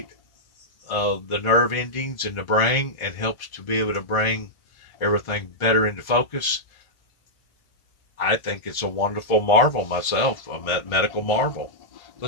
the nerve endings in the brain and helps to be able to bring everything better into focus, I think it's a wonderful marvel myself, a medical marvel.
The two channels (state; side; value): late; right; 1.4 ms